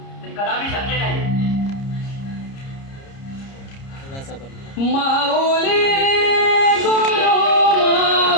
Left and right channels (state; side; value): late; right; 30 ms